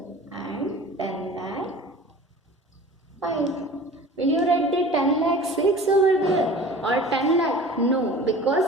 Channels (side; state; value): both; normal; correlation 0.41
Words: and 10 lakh 5. Will you write the 10 lakh 6 over there or 10 lakh? No,